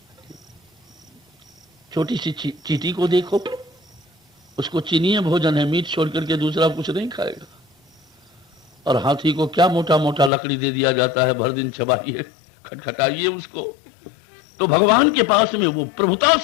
छोटी सी चीटी को देखो, उसको चीनी भोजन है, मीट छोड़ करके दूसरा कुछ नहीं खाएगा। और हाथी को क्या मोटा मोटा लकड़ी दे दिया जाता है, भर दिन चबाइए, खटखटाइए उसको। तो भगवान के पास में वो प्रभुता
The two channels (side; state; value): right; drops out; at 10.3 s